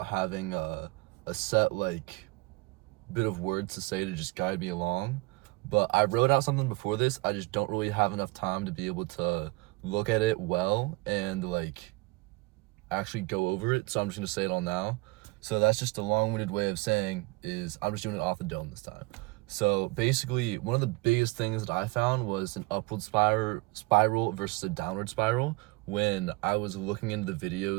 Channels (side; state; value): left; quieter; 22.9 dB